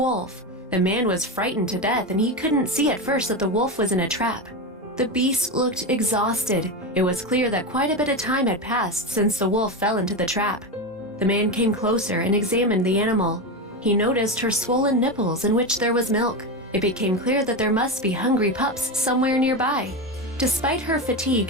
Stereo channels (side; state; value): both; normal; correlation 0.16